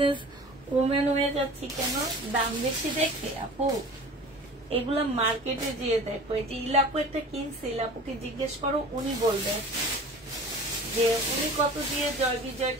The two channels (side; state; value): both; normal; correlation 0.40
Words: ওমেন হয়ে যাচ্ছি কেন? দাম বেশি দেখে আপু। এগুলা মার্কেটে যেয়ে দেখো, এই যে ইলাপু একটা কিনছে, ইলাপুকে জিজ্ঞেস করো, উনি বলবে যে উনি কত দিয়ে জয়